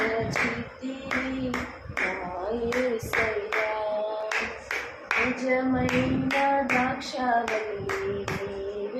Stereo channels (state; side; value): identical; both; correlation 1.00